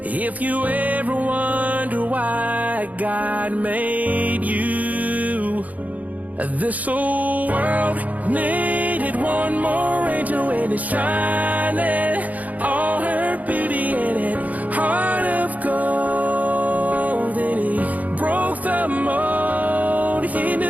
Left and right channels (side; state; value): left; late; 0.076 ms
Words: If you ever wonder why God made you, this old world needed one more angel and it's shining, all her beauty in it, heart of gold. And he broke the mold. He